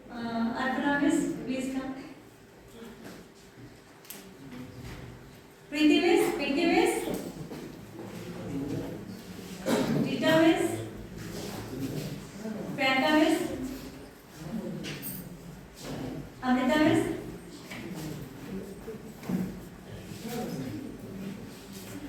Arpana Miss, please come. Preeti Miss, Pinky Miss, Rita Miss, Priyanka Miss, Amrita Miss,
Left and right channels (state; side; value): identical; both; correlation 1.00